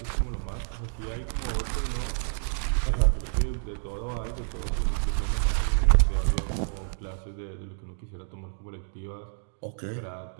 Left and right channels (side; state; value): left; silent; digital silence